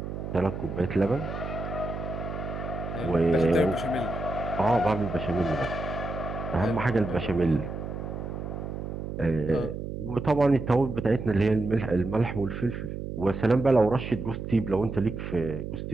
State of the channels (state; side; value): noise; right; hum, 6 dB below the sound